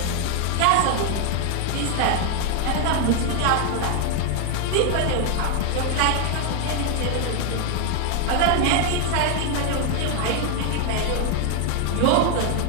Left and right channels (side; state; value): both; different; correlation 0.00